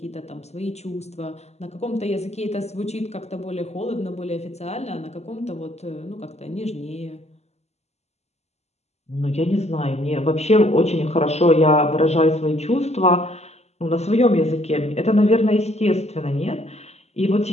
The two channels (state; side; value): late; right; 0.31 ms